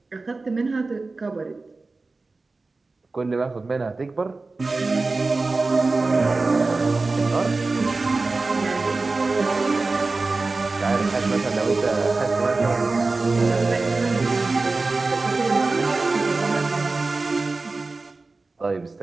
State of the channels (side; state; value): left; quieter; 3.6 dB